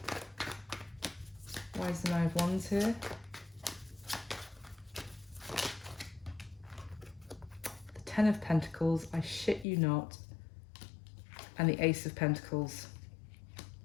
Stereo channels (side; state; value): right; drops out; at 9.7 s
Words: Why is the Nine of Wands here? The Ten of Pentacles, I shit you not. And the Ace of Pentacles.